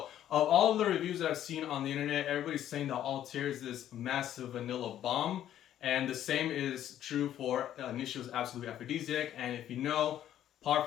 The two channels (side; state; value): right; quieter; 11.4 dB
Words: of all of the reviews that I've seen on the internet, everybody's saying that Althair is this massive vanilla bomb. And the same is true for Inicio's Absolute Aphrodisiac. And if you know,